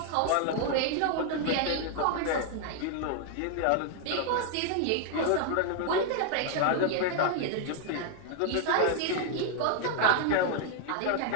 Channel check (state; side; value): different; both; correlation 0.00